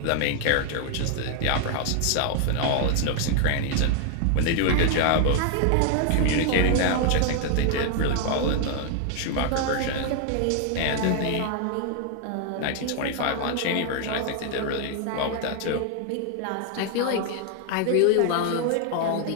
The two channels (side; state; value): both; different; correlation 0.00